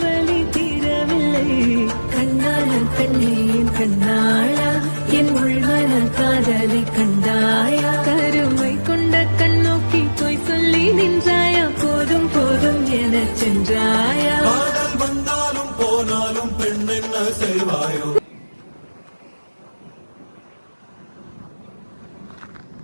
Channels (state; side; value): inverted; both; correlation -1.00